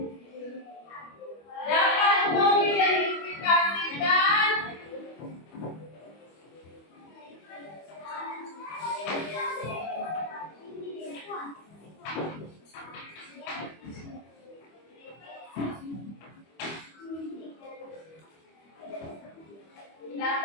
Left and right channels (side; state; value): right; late; 25 ms